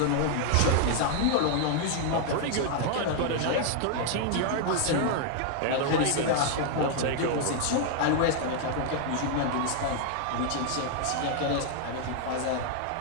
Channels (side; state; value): both; different; correlation 0.00